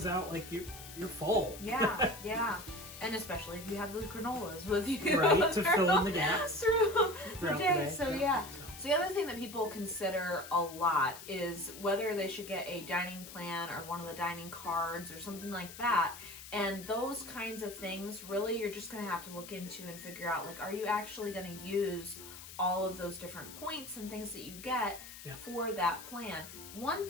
out like you're full. Yeah. And especially if you have those granolas with you. Right, to fill in the gaps through the day. So the other thing that people consider a lot is whether they should get a dining plan or one of the dining cards or something like that. And those kinds of things, really, you're just going to have to look into and figure out, are you actually going to use all of those different points and things that you get for that plan? One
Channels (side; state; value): left; noise; hiss, 14 dB below the sound